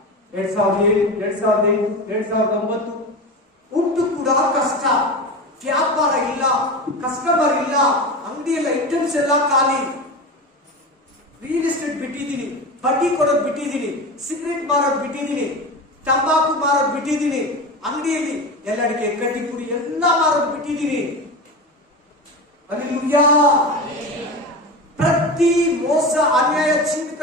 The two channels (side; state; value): both; normal; correlation 0.26